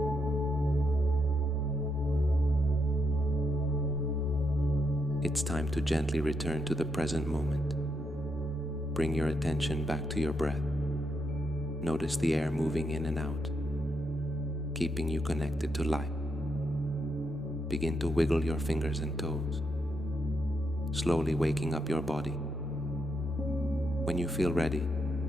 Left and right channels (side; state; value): both; normal; correlation 0.80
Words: It's time to gently return to the present moment. Bring your attention back to your breath. Notice the air moving in and out, keeping you connected to life. Begin to wiggle your fingers and toes, slowly waking up your body. When you feel ready,